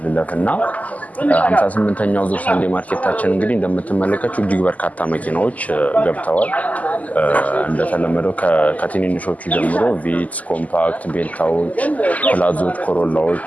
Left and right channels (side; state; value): right; late; 0.075 ms